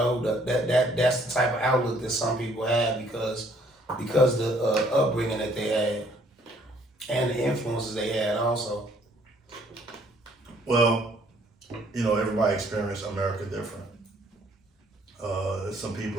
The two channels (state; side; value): normal; both; correlation 0.63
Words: the type of outlook that some people have because the upbringing that they had and the influences they had also. Well, everybody experienced America different. There's some